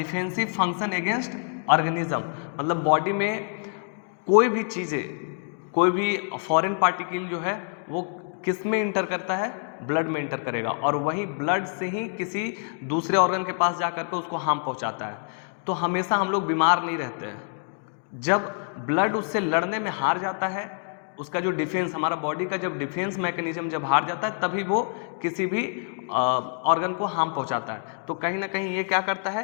फंक्शन अगेंस्ट ऑर्गेनिज्म, मतलब बॉडी में कोई भी चीजें, कोई भी फॉरेन पार्टिकल जो है वो किस में इंटर करता है, ब्लड में इंटर करेगा, और वही ब्लड से ही किसी दूसरे ऑर्गन के पास जाकर के उसको हार्म पहुंचाता है। तो हमेशा हम लोग बीमार नहीं रहते हैं। जब ब्लड उससे लड़ने में हार जाता है, उसका जो डिफेंस, हमारा बॉडी का जब डिफेंस मैकेनिज्म जब हार जाता है, तभी वो किसी भी ऑर्गन को हार्म पहुंचाता है। तो कहीं ना कहीं ये क्या करता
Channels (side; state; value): right; silent; 61 dB below the other